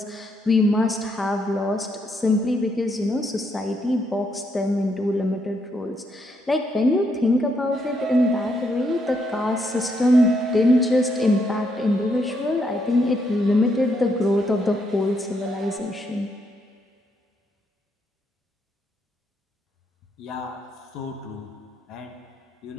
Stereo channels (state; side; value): normal; both; correlation 0.76